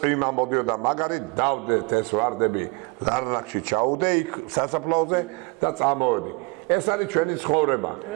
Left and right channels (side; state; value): left; quieter; 28.5 dB